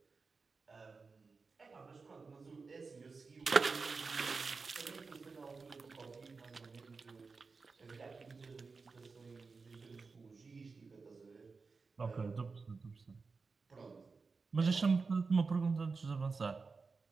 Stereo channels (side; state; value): left; quieter; 4.5 dB